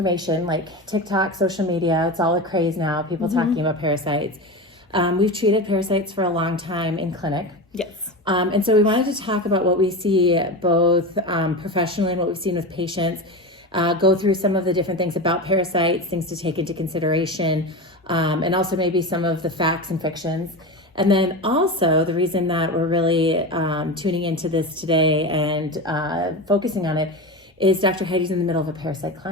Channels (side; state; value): both; normal; correlation 0.23